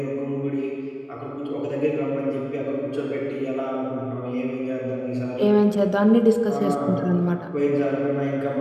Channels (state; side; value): identical; both; correlation 1.00